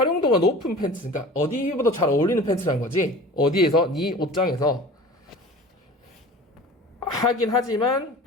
높은 팬츠, 그러니까 어디보다 잘 어울리는 팬츠라는 거지. 어디에서? 네 옷장에서. 하긴 하지만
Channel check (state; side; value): normal; both; correlation 0.40